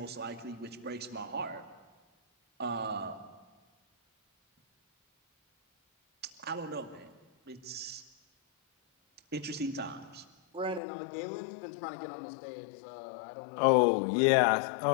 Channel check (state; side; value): drops out; right; at 10.8 s